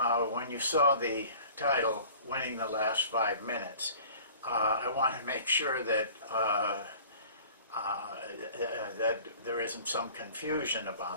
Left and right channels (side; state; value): both; inverted; correlation -0.46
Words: when you saw the title, Winning the Last 5 Minutes, I want to make sure that that there isn't some confusion